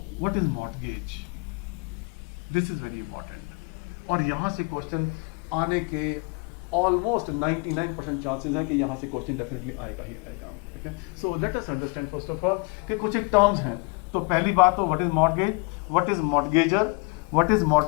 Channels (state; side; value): quieter; right; 32.4 dB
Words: what is mortgage, this is very important, और यहां से क्वेश्चन आने के ऑलमोस्ट 99% चांसेस हैं कि यहाँ से क्वेश्चन डेफिनेटली आएगा ही आएगा, ठीक है। So let us understand first of all कि कुछ एक टर्म्स हैं। तो पहली बात तो what is mortgage, what is mortgager, what is